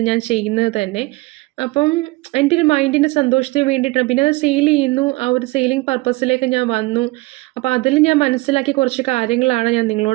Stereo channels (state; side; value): quieter; left; 22.3 dB